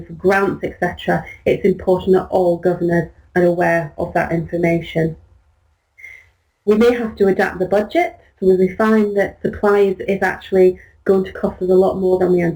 for grants, etc., it's important that all governors are aware of that information. We may have to adapt the budget, so if we find that supplies is actually going to cost us a lot more than we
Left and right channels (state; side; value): identical; both; correlation 1.00